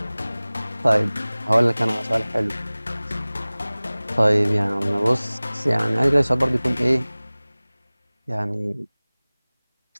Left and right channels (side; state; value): both; inverted; correlation -0.99